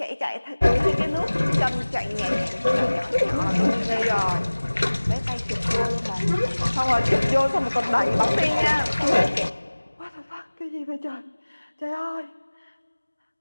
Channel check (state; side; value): inverted; both; correlation -1.00